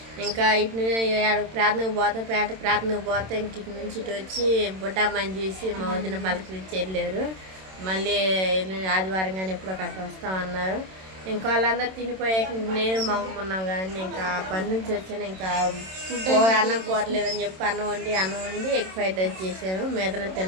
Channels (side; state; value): left; late; 27 ms